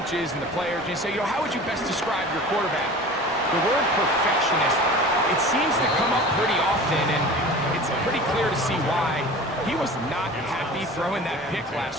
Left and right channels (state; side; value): normal; both; correlation 0.39